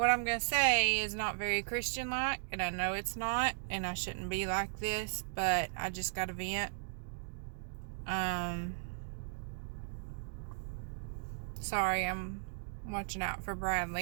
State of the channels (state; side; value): silent; left; digital silence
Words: I'm gonna say is not very Christian-like, and I know it's not, and I shouldn't be like this, but I just gotta vent. Sorry, I'm watching out for